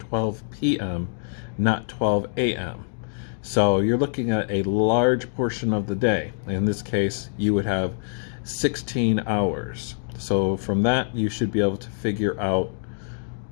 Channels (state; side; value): silent; right; digital silence